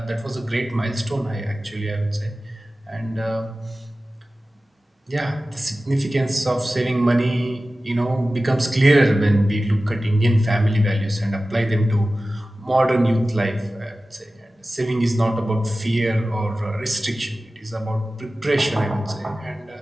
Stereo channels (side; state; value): both; normal; correlation 0.96